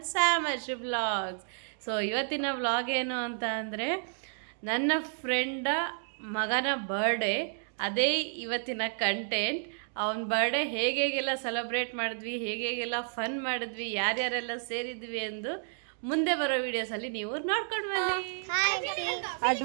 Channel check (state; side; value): silent; left; 57 dB below the other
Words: Samarshi vlogs. So ಇವತ್ತಿನ ವ್ಲಾಗ್ ಏನು ಅಂತ ಅಂದರೆ, ನನ್ನ ಫ್ರೆಂಡ ಮಗನ ಬರ್ಡೇ, ಅದೇ ಇವತ್ತಿನ ಕಂಟೆಂಟ್. ಅವನ ಬರ್ಡೇ ಹೇಗೆಲ್ಲ ಸೆಲೆಬ್ರೇಟ್ ಮಾಡಿದ್ವಿ, ಹೇಗೆಲ್ಲ ಫನ್ ಮಾಡಿದ್ವಿ, ಯಾರ್ಯಾರೆಲ್ಲ ಸೇರಿದ್ವಿ ಎಂದು ಮುಂದೆ ಬರೋ ವಿಡಿಯೋಸಲ್ಲಿ ನೀವು ನೋಡ್ಕೊಂಡು ಬನ್ನಿ.